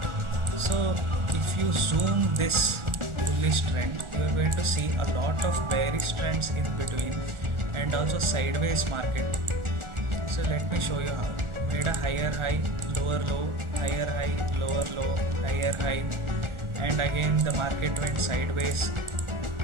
So if you zoom this bullish trend, you are going to see a lot of bearish trends in between and also sideways market. So let me show you how. Made a higher high, lower low, higher high, lower low, higher high, and again the market went sideways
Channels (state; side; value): late; left; 1.4 ms